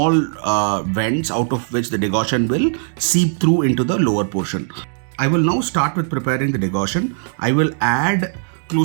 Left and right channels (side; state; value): left; silent; 64 dB below the other